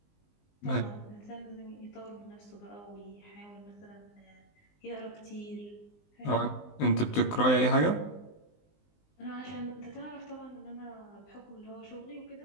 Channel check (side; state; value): right; late; 19 ms